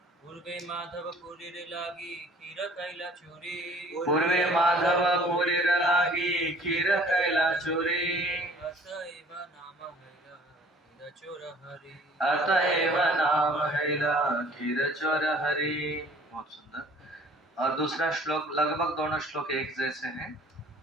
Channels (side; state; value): both; normal; correlation 0.53